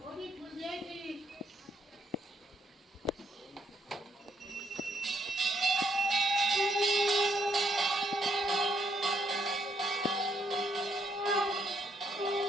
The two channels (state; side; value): normal; both; correlation 0.74